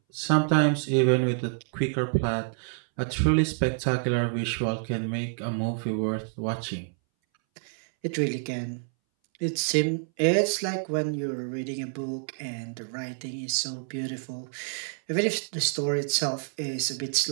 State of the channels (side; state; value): left; silent; 59 dB below the other